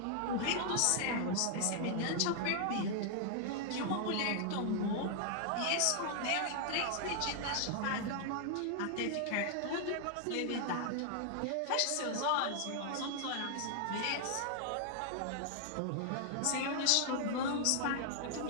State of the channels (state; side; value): different; both; correlation 0.00